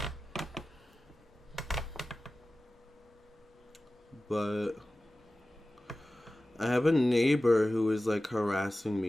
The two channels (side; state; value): both; normal; correlation 0.96